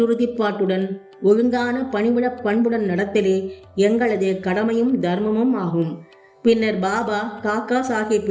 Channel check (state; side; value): identical; both; correlation 1.00